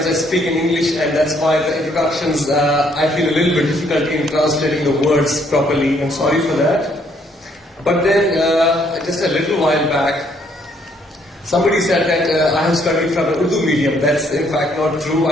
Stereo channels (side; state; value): both; normal; correlation 0.68